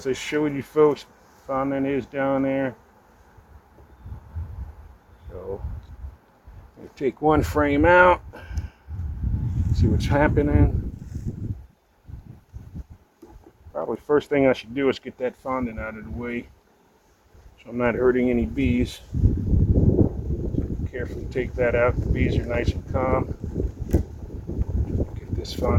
I showed you folks, faunet is down there. So take one frame out, see what's happening. Probably first thing I should do is get that fondant out of the way so I'm not hurting any bees. Carefully take that out. The bees are nice and calm. Get this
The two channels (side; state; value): both; identical; correlation 1.00